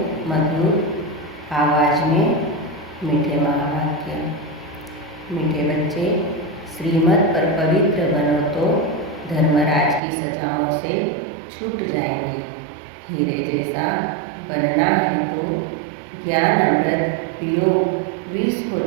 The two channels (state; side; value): drops out; left; at 10.0 s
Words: मधुर आवाज़ में मीठे महावाक्य। मीठे बच्चे, श्रीमत पर पवित्र बनो तो धर्मराज की सजाओं से छूट जाएंगे। हीरे जैसा बनना है तो ज्ञान अमृत पियो, विष को